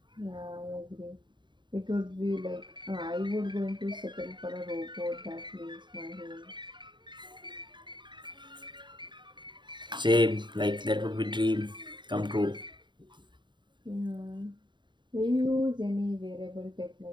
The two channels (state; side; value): late; left; 0.22 ms